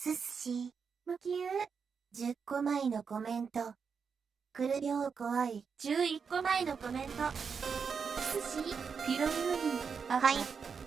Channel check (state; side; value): quieter; left; 6.0 dB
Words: 司。無給。10個前のコメント。くるびょう怖い。11個前のコメント。寿司。ピロミウリン。はい。